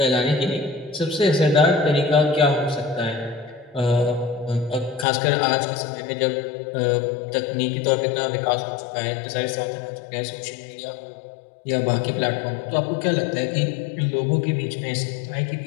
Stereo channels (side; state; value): right; drops out; at 5.1 s